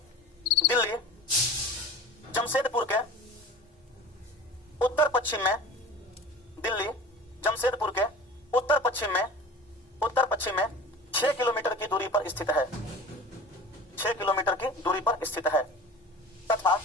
जमशेदपुर के उत्तर पश्चिम में 6 किलोमीटर की दूरी पर स्थित है। 6 किलोमीटर की दूरी पर स्थित है। तथा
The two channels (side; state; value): both; normal; correlation 0.37